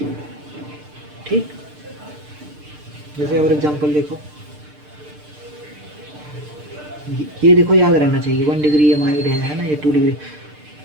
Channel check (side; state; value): left; late; 6.7 ms